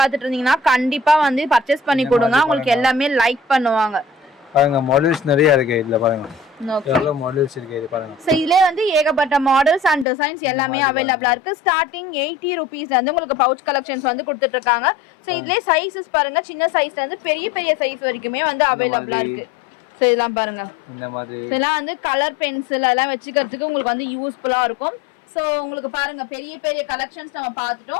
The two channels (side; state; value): right; drops out; at 10.1 s